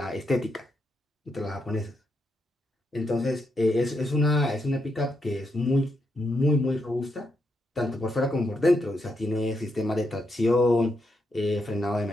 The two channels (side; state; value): both; normal; correlation 0.81